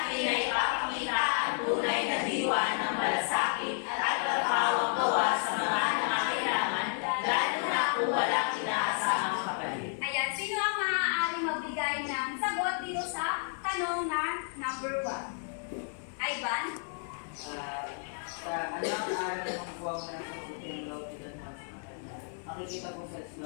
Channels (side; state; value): right; silent; 57 dB below the other